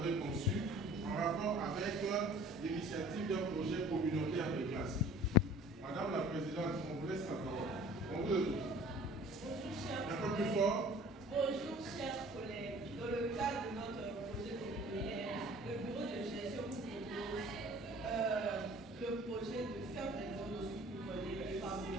conçu en rapport avec l'initiative d'un projet communautaire de classe. Madame la présidente, on vous laisse la parole. On vous écoute. Un peu plus fort. Bonjour chers collègues. Dans le cadre de notre projet communautaire, le bureau de gestion vous propose le projet de faire des dons pour les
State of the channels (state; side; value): normal; both; correlation 0.48